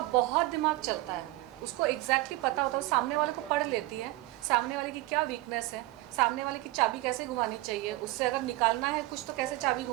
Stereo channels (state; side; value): quieter; left; 19.3 dB